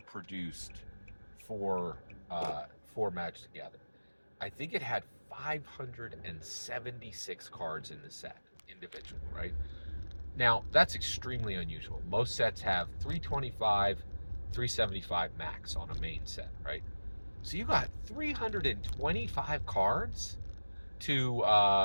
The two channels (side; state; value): both; inverted; correlation -1.00